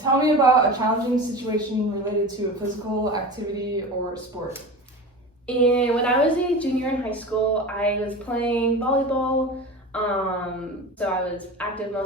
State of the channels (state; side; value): normal; both; correlation 0.31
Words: Tell me about a challenging situation related to a physical activity or sport. And when I was a junior in high school, I was playing volleyball. So I was active